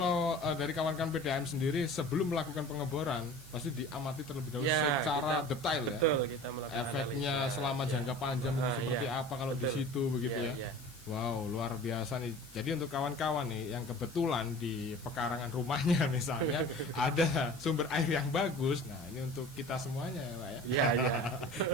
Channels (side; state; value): left; noise; hiss, 21 dB below the sound